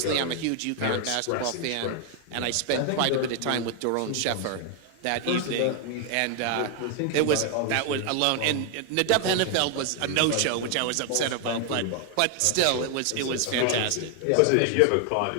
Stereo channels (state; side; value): different; both; correlation 0.00